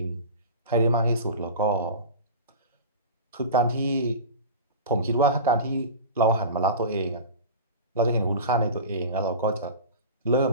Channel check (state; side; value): inverted; both; correlation -0.32